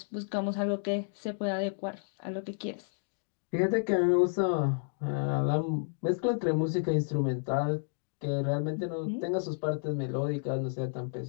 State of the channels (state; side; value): silent; right; digital silence